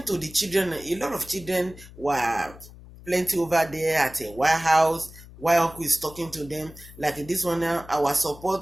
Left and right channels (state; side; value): noise; left; hum, 19 dB below the sound